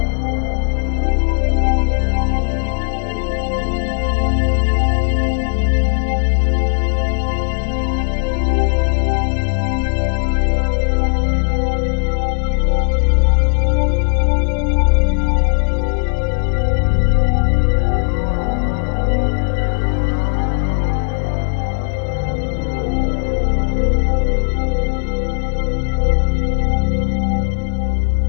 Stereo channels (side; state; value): right; silent; 57 dB below the other